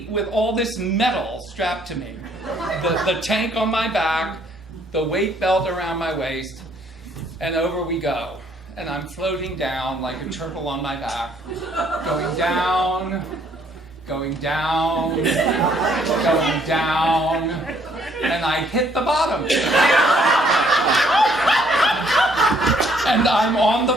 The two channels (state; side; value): normal; both; correlation 0.65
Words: with all this metal strapped to me. The tank on my back, the weight belt around my waist, and over we go. And I'm floating down like a turtle on my back, going down, going down, going down, and I hit the bottom. And I'm on